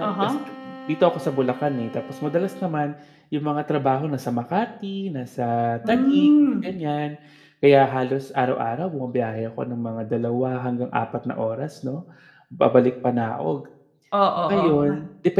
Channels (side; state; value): both; identical; correlation 1.00